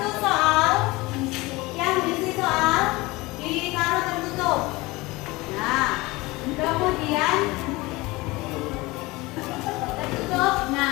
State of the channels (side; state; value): right; quieter; 21.9 dB